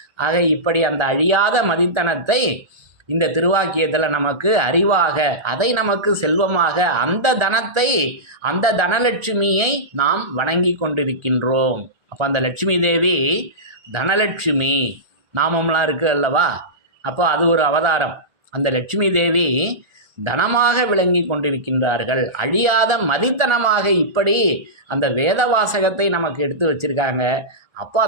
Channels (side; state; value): left; late; 1.4 ms